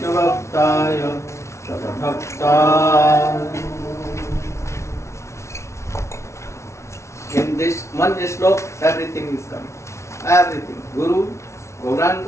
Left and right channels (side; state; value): right; late; 0.13 ms